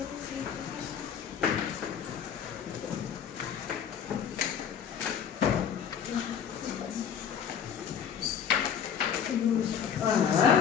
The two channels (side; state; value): right; quieter; 8.0 dB